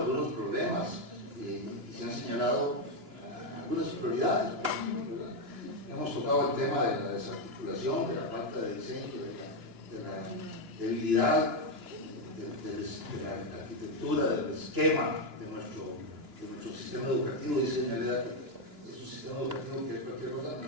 problemas y se han señalado algunas prioridades, ¿verdad? Hemos tocado el tema de la desarticulación, de la falta de diseño, de la debilidad de la arquitectura, del esquema de nuestro sistema educativo. Dice doña Leda que es un sistema educativo que es cualquier cosa, no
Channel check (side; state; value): left; late; 2.9 ms